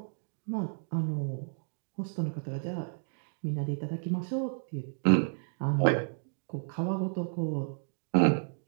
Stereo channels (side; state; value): left; silent; digital silence